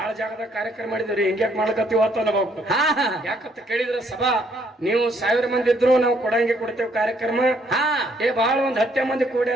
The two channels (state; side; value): normal; both; correlation 0.68